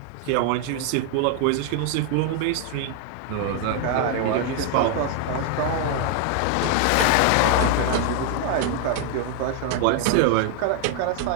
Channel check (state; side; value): different; both; correlation 0.00